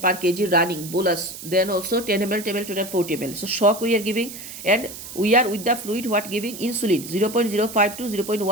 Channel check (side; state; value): right; noise; hiss, 12 dB below the sound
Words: per kg running bolus, then also 10 ml, 10 ml, total 40 ml. So shock we are giving, and we are with the fluid what giving insulin 0.05 to